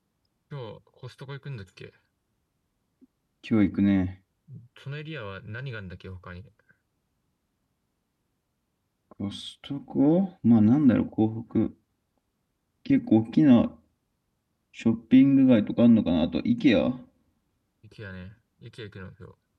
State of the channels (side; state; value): both; identical; correlation 1.00